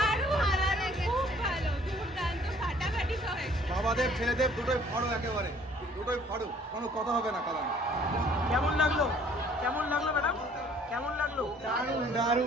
ভালো লেগেছে। খুব ভালো, দুর্দান্ত ফাটাফাটি সব হয়েছে। বাবাদেব ছেলেদেব দুটোই ফাড়ো, একেবারে দুটোই ফাড়ো, কোনো কথা হবে না কালাম। কেমন লাগলো? কেমন লাগলো ম্যাডাম? কেমন লাগলো? দারুণ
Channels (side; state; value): both; normal; correlation 0.57